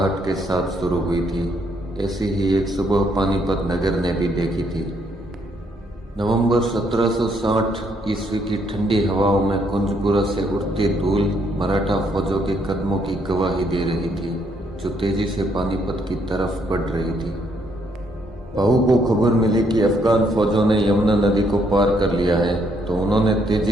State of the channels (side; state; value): both; normal; correlation 0.72